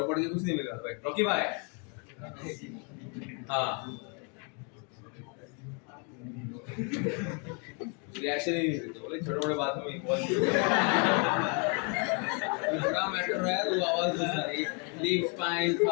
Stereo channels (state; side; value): quieter; right; 36.6 dB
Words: पढ़ के कुछ नहीं मिला भाई. रॉकी भाई, हाँ, रिएक्शन ही नहीं देते. बोले छोटे मोटे बात में इन्वॉल्व बड़ा मैटर है तो आवाज दे सारी लीफ स्पाइन